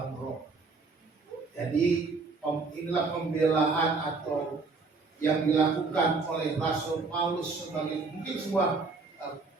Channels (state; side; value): quieter; left; 4.1 dB